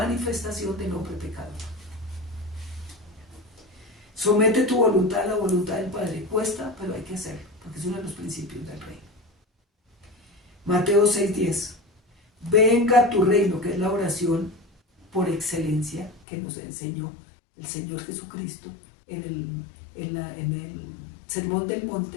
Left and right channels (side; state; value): right; drops out; at 16.2 s